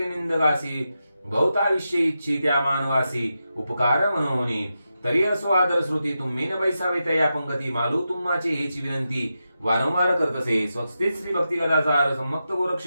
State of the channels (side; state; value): both; inverted; correlation -0.89